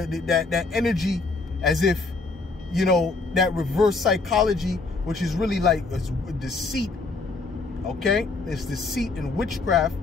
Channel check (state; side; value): quieter; right; 3.8 dB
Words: energy as if, you know, that reverse psychology, which is really like deceit, okay? It's deceit and witchcraft.